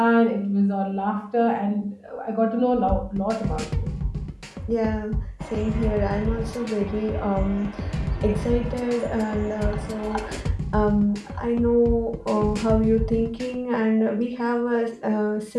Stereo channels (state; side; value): identical; both; correlation 1.00